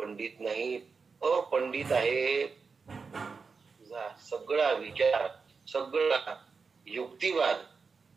नाही, अपंडित आहे. तुझा सगळा विचार, सगळा युक्तिवाद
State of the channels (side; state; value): left; quieter; 5.0 dB